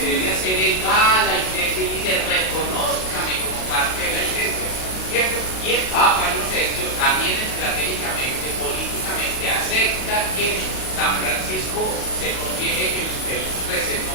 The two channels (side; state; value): right; late; 38 ms